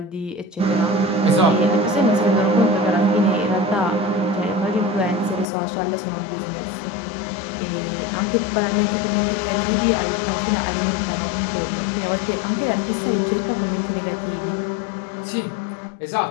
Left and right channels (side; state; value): right; drops out; at 5.5 s